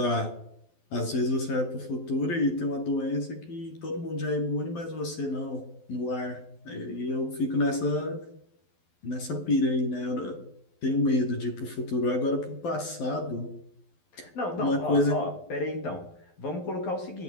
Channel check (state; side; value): late; right; 12 ms